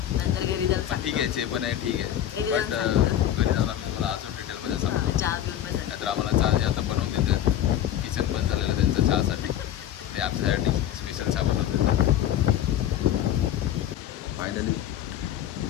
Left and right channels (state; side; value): quieter; right; 11.2 dB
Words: नंतर घरी जाऊन ठीक आहे. जे पण आहे ठीक आहे. बट घरी जाऊन आम्ही तुम्हाला अजून डिटेलमध्ये सांगतो. चहा घेऊन पण नाहीतर आम्हाला चहा जे आता बनवून देतात किचन बंद झालेलं त्यांचं चहासाठी ते आमच्यासाठी स्पेशल चहा बनवून देतात.